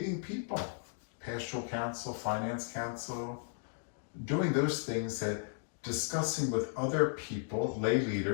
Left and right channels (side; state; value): right; silent; digital silence